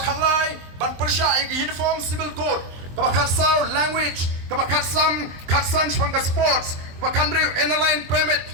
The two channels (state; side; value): late; left; 23 ms